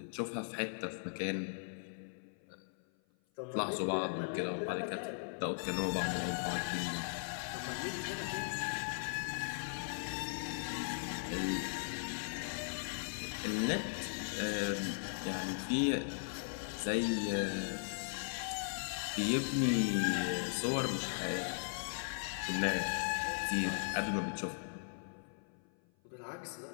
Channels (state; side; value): silent; right; 52 dB below the other